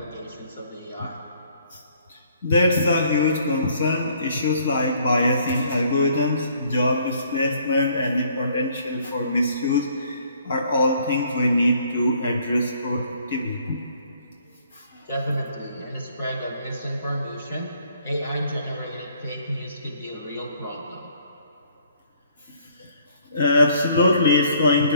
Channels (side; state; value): both; inverted; correlation -0.62